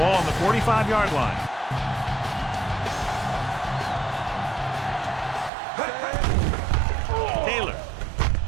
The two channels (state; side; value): drops out; left; at 5.5 s